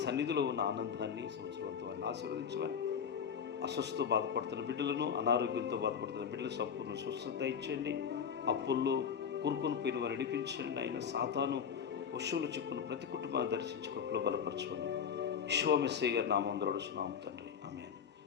సన్నిధిలో ఉన్న ఆనందాన్ని సంవత్సరంతో వారిని ఆశీర్వదించమని, అస్వస్థతో బాధపడుతున్న బిడ్డలను, అనారోగ్యంతో బాధపడుతున్న బిడ్డలు సంపూర్ణ స్వస్థత ఇచ్చండి. అప్పుల్లో కూరుకొని పోయిన వారు నడిపించండి. ఆయన సాతాను వశువులు చిక్కును ప్రతి కుటుంబాన్ని దర్శించి కృపలో బలపరచమని, విశ్వమెస్సయ్య గారి నామం ద్వారా అడుగుతున్నాము తండ్రి. ఆమేన్.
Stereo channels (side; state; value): right; quieter; 7.3 dB